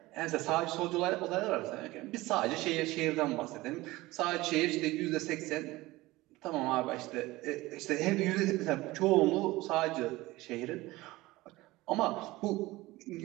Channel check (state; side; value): quieter; left; 19.4 dB